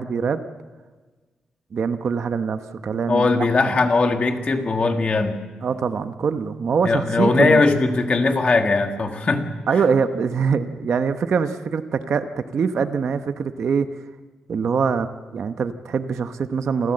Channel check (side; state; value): both; normal; correlation 0.81